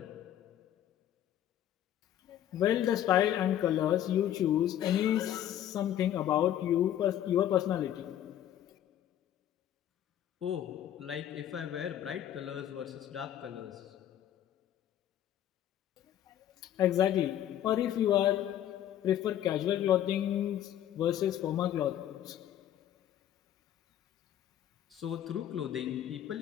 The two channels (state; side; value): quieter; right; 11.3 dB